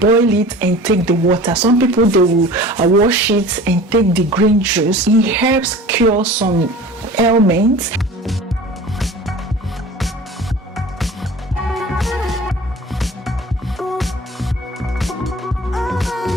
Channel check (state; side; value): normal; both; correlation 0.41